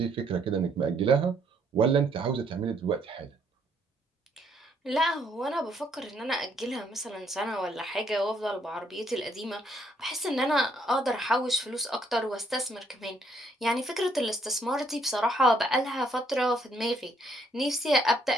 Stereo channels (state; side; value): normal; both; correlation 0.69